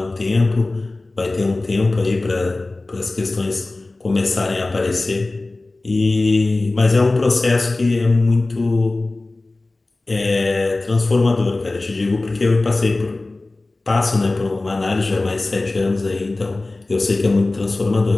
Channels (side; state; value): right; quieter; 3.1 dB